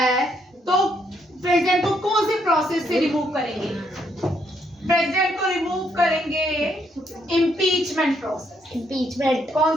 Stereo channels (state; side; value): normal; both; correlation 0.73